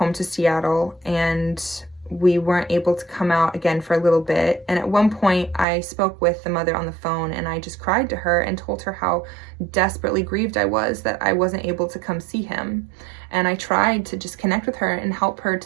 to Seattle, and we weren't able to come out again for a little bit. And at one point I spoke with the mother on the phone, and I just cried to her and told her how desperately grieved I was that I wasn't able to come see him. And I tried to just connect with her and help her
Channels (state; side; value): drops out; left; at 5.7 s